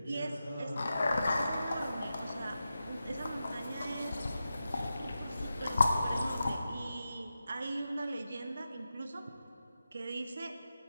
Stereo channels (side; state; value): both; inverted; correlation -0.91